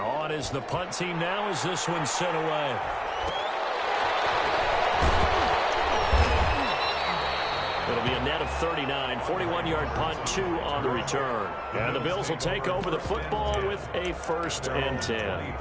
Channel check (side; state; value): both; identical; correlation 1.00